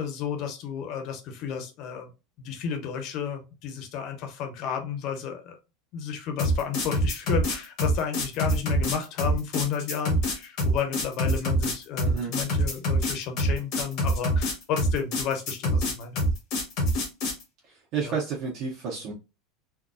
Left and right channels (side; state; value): both; normal; correlation 0.33